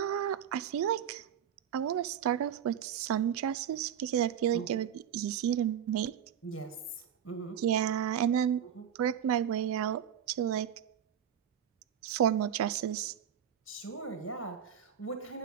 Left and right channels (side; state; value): left; quieter; 9.1 dB